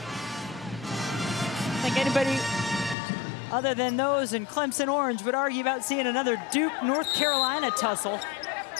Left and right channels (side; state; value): right; drops out; at 3.0 s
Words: I think anybody other than those in Clemson Orange would argue about seeing another Duke-North Carolina tussle.